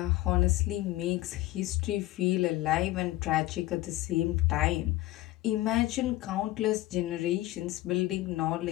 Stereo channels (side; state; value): right; quieter; 17.0 dB